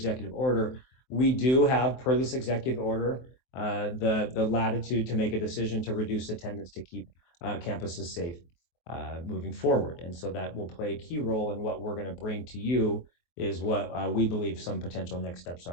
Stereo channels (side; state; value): right; late; 23 ms